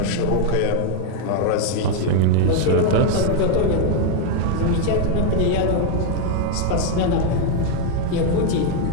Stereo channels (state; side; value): different; both; correlation 0.01